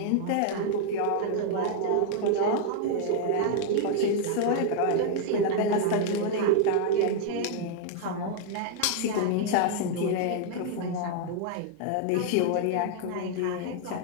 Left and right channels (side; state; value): both; different; correlation 0.00